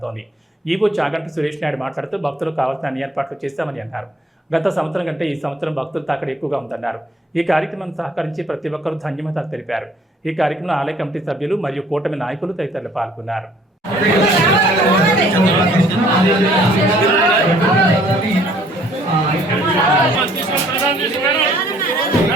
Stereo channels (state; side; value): normal; both; correlation 0.59